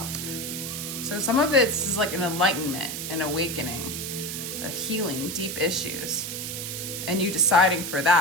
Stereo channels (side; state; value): right; noise; hiss, 5 dB below the sound